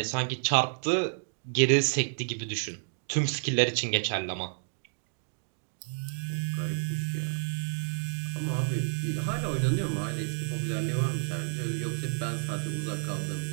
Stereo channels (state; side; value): silent; left; digital silence